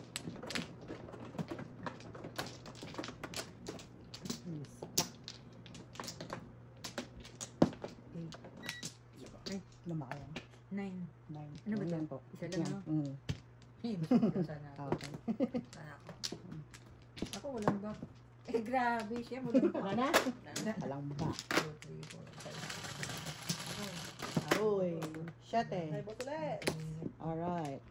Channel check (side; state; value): both; identical; correlation 1.00